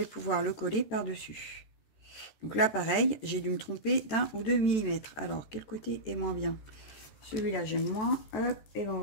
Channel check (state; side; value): late; right; 14 ms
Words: pouvoir le coller par-dessus. Donc là, pareil, j'ai dû me tromper d'1 ou 2 mm. Alors, quel côté est moins bien? Celui-là, j'aime moins. Hop, et ben, on